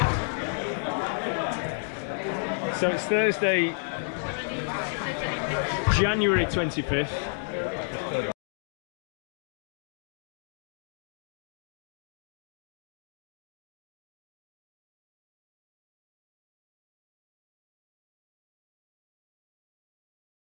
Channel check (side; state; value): right; silent; digital silence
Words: So it's Thursday, January 25th.